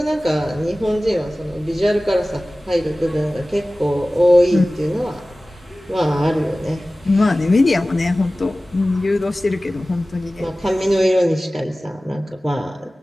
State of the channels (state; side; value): normal; both; correlation 0.97